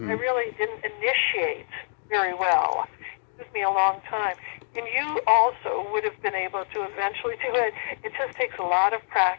really didn't initiate very well. It took me a long time. And you also would have been able to eventually do it. It just takes a lot of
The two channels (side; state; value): right; silent; digital silence